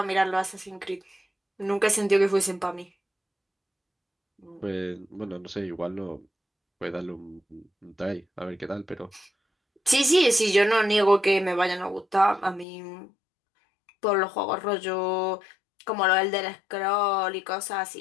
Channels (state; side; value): drops out; right; at 12.7 s